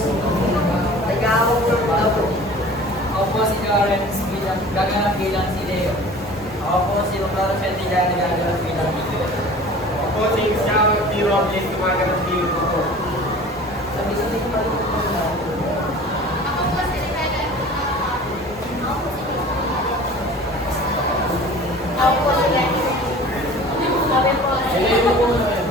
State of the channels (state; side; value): normal; both; correlation 0.43